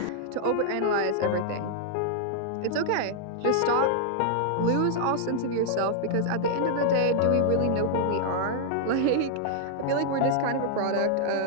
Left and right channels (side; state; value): both; different; correlation -0.01